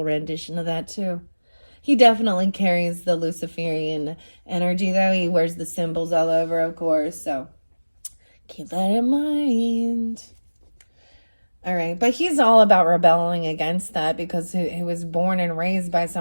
rendition of that too. He definitely carries the Luciferian energy, though. He wears the symbols all over, of course, so keep that in mind. All right, but he's all about rebelling against that because he was born and raised by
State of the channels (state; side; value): inverted; both; correlation -1.00